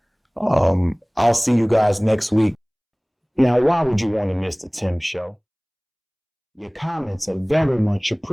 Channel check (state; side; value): identical; both; correlation 1.00